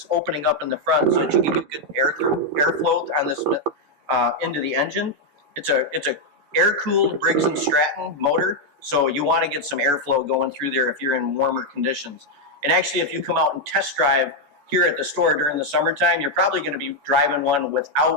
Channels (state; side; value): late; left; 14 ms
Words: opening up in the front so that you can get good airflow on this into the engine. It's a air-cooled Briggs & Stratton motor, so you want to get some airflow going through there if you're in warmer conditions. And actually, if you come out and test drive here at the store during the summertime, you're probably going to be driving one